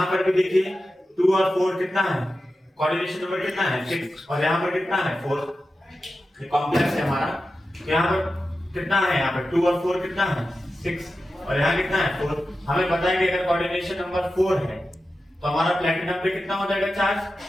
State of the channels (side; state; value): both; normal; correlation 0.92